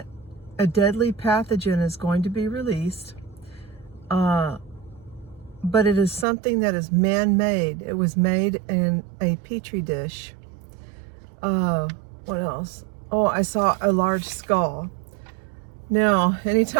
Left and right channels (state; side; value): drops out; left; at 6.2 s